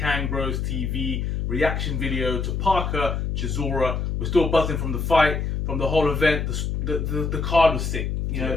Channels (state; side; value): noise; left; hum, 1 dB below the sound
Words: KangBrosTV reaction video to Parker Chisora. We're still buzzing from the fight, from the whole event. The card was sick, you